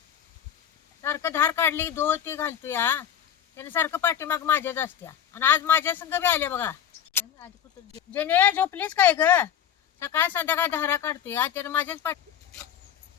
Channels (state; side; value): quieter; right; 9.4 dB